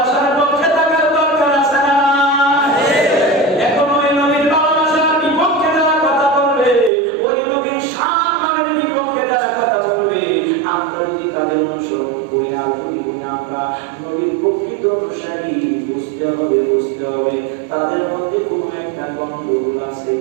পক্ষে থাকার দরকার আছে না? এখন ওই নবীর ভালোবাসার বিপক্ষে যারা কথা বলবে, ওই নবীর সম্মানের বিপক্ষে যারা কথা বলবে, আমরা যদি তাদের অনুসরণ করি আর যদি আমরা নবীর প্রকৃত অনুসারী, বুঝতে হবে তাদের মধ্যে কোনো একটা গন্ডগোল আছে।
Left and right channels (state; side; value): drops out; left; at 6.9 s